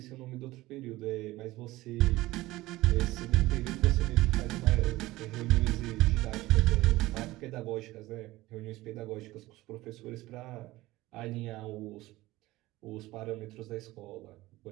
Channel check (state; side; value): quieter; left; 18.2 dB